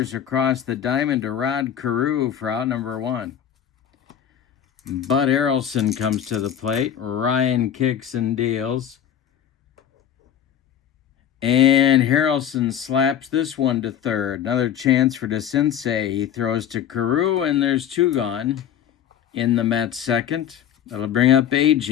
across the diamond to Rod Carew for out number 1. Bud Harrelson comes to the plate. Ryan kicks and deals. And Harrelson slaps this one to third. Another chance for DeCinces. He throws to Carew, and there's 2 gone in the Mets' second. That'll bring up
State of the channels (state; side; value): quieter; right; 9.6 dB